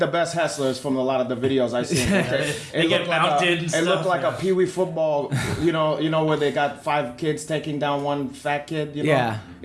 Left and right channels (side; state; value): both; identical; correlation 1.00